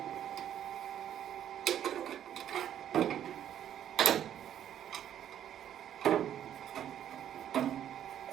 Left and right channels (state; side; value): quieter; left; 10.4 dB